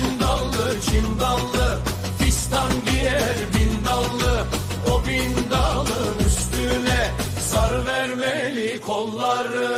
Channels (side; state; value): both; identical; correlation 1.00